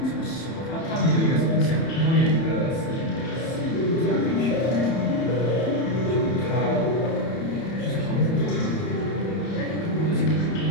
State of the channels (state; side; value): late; right; 30 ms